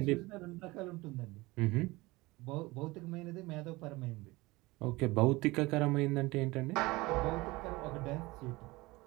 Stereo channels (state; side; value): quieter; left; 21.6 dB